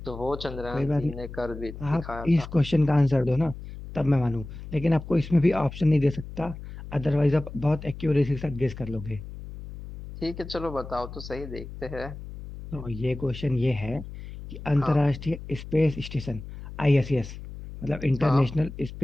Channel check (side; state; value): left; noise; hum, 12 dB below the sound